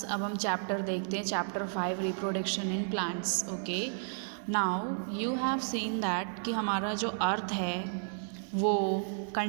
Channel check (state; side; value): silent; left; digital silence